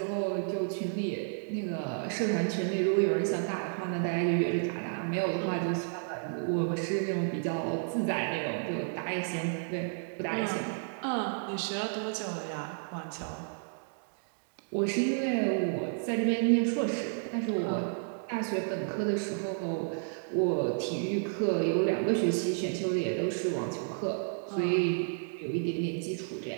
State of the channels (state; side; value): silent; left; digital silence